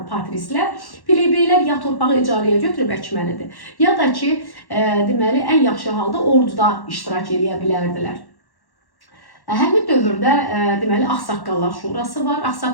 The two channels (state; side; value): late; right; 1.1 ms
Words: patrislər. Plebeylər ya torpağı icarəyə götürüb əkməlidir, ya da ki, deməli, ən yaxşı halda orduda iştirak edə bilərdilər. Həmin dövrdə deməli Ağsaqqallar Şurası var.